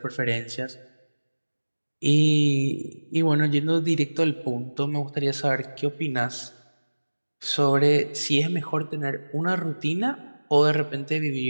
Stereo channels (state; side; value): inverted; both; correlation -1.00